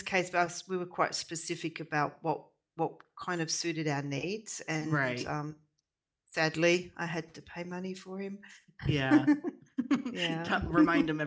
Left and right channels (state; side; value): identical; both; correlation 1.00